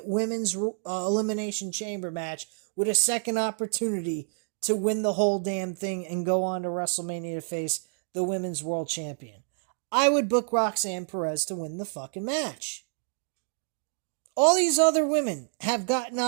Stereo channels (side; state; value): left; silent; digital silence